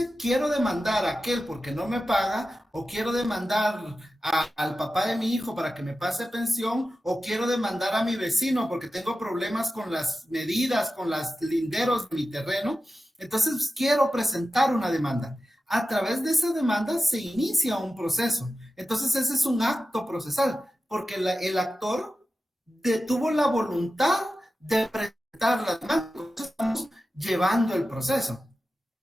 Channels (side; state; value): both; normal; correlation 0.93